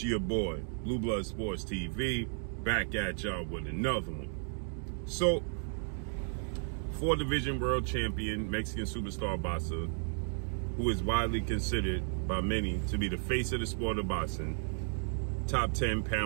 your boy, Blue Blood Sports TV, back at y'all with another one. So, 4-division world champion, Mexican superstar boxer, who is widely considered by many to be the face of the sport of boxing, top 10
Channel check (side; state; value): left; silent; 55 dB below the other